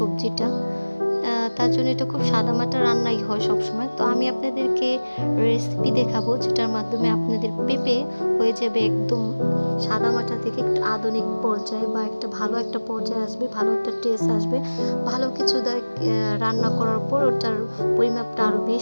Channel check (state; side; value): inverted; both; correlation -1.00